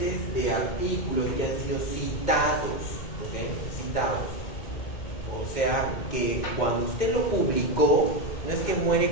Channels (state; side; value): late; right; 2.1 ms